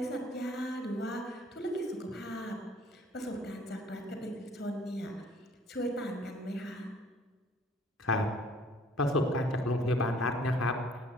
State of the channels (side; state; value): both; normal; correlation 0.57